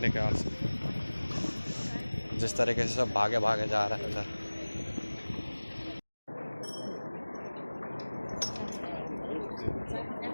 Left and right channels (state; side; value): inverted; both; correlation -1.00